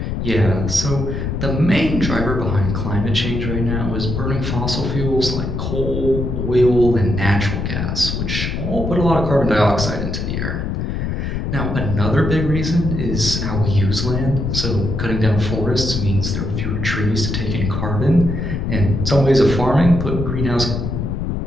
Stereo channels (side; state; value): left; noise; rumble, 2 dB below the sound